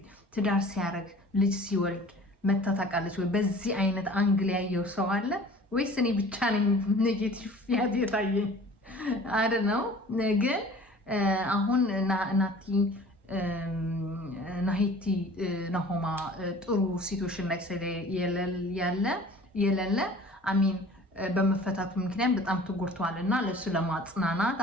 ትዳር ሲያደርግ ልጅ ሲወልድ መታ ታውቃለች ወይ? በዚህ አይነት አንግል ያየው ሰው አለ ወይስ እኔ ብቻ ነኝ ኔጌቲቭ ያት የታየኝ? አይደል ነው። ግን አሁን ናቲ ናሂቲ ናሆማ ጥሩ ሲቹዌሽን ላይ የሌለ አሚን በመፈታቱ ምክንያት በጣም ተጎድቷል እና ለሱ ለማጽናናት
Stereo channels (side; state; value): both; normal; correlation 0.46